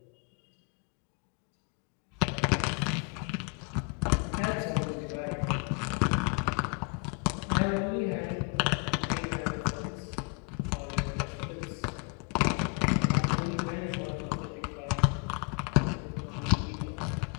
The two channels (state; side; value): quieter; right; 35.0 dB